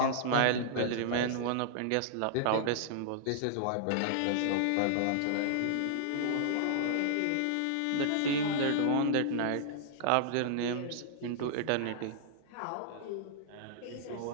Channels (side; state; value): both; different; correlation -0.01